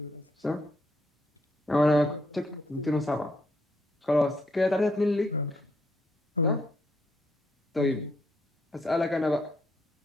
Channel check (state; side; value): normal; both; correlation 0.73